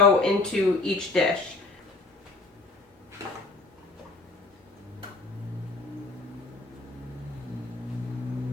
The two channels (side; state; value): right; quieter; 3.3 dB